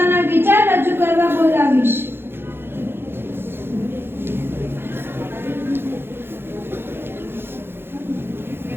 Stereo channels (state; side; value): late; left; 0.11 ms